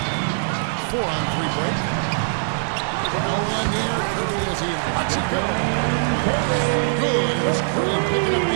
4-on-3 break. No one near Curry as he lets it go. Good, and it's Green picking up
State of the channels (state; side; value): silent; left; digital silence